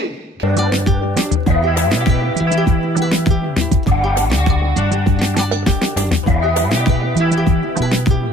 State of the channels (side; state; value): both; normal; correlation 0.62